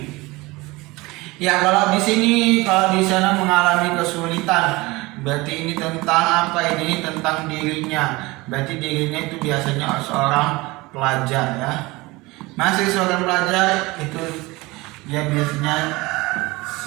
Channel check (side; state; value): left; quieter; 22.4 dB